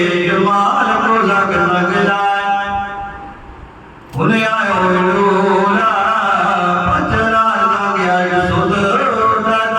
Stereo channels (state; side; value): identical; both; correlation 1.00